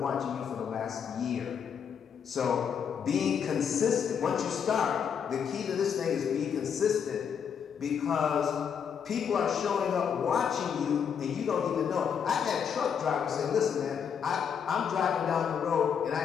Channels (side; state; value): right; quieter; 7.4 dB